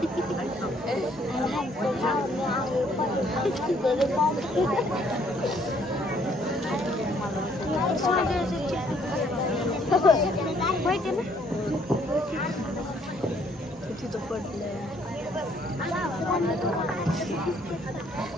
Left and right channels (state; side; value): normal; both; correlation 0.65